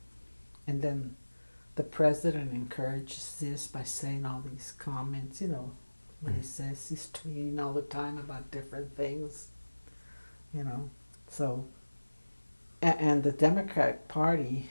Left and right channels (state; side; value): inverted; both; correlation -1.00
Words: then the president encourages this by saying all these comments, you know, what he says. He's tweeting all the time about different things, you know. So, and the Democratic Party